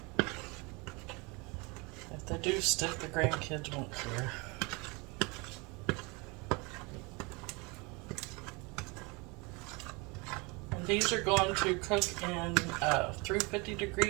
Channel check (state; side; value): quieter; left; 27.8 dB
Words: If they do stick, the grandkids won't care. And these are going to cook in a